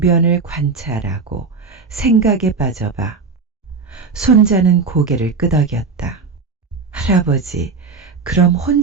관찰하고 생각에 빠져봐. 손자는 고개를 끄덕였다. 할아버지, 그럼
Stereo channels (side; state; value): left; quieter; 4.7 dB